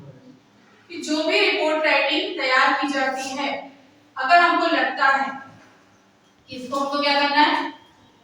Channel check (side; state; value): both; identical; correlation 1.00